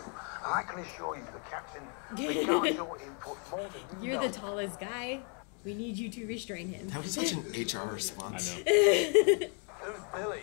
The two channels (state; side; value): quieter; right; 38.3 dB